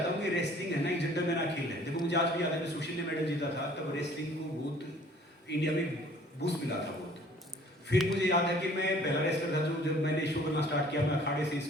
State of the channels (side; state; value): both; normal; correlation 0.54